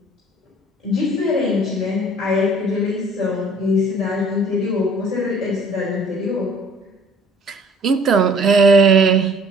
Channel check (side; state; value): both; normal; correlation 0.53